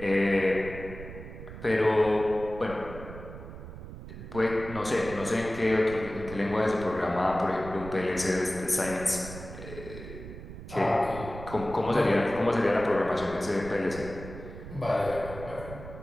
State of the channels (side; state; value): right; noise; rumble, 12 dB below the sound